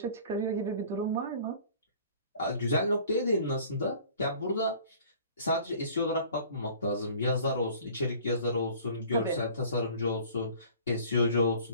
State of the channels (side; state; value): both; inverted; correlation -0.49